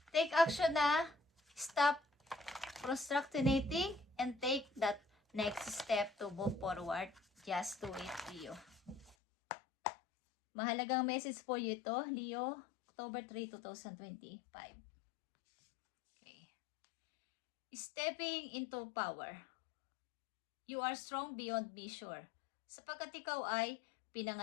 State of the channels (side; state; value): right; drops out; at 9.2 s